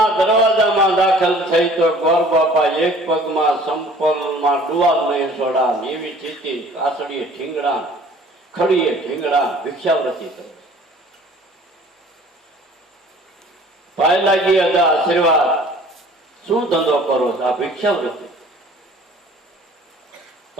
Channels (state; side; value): normal; both; correlation 0.50